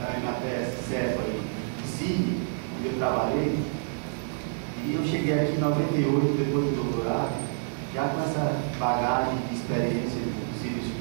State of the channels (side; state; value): left; silent; 59 dB below the other